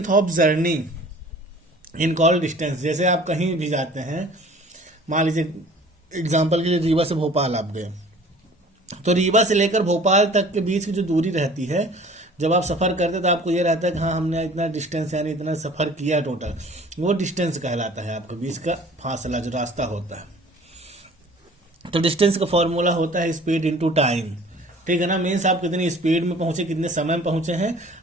of journey in call distance. जैसे आप कहीं भी जाते हैं, मान लीजिए एग्जाम्पल के लिए रीवा से भोपाल आप गए, तो रीवा से लेकर भोपाल तक के बीच की जो दूरी रहती है, जब आप सफ़र करते हैं तो आपको ये रहता है कि हाँ हमने इतना डिस्टेंस यानी इतना सफ़र किया टोटल, वो डिस्टेंस कहलाता है आपके बीच का फासला जो रास्ता होता है। तो डिस्टेंस का फॉर्मूला होता है स्पीड इनटू टाइम। ठीक है ना। मीन्स आप कितनी स्पीड में पहुंचे, कितने समय में पहुंचे हैं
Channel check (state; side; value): normal; both; correlation 0.48